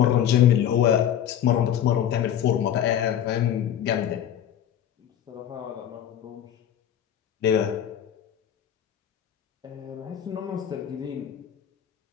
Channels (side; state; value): right; quieter; 10.1 dB